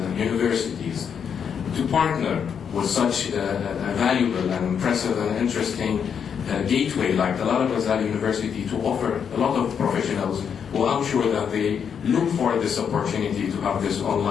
universities, to partner with such a valuable and impressive and interesting gateway like Talal Abu-Ghazaleh University to offer a lot of professionals who I'm sure that they look for this opportunity to have this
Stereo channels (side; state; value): right; quieter; 7.4 dB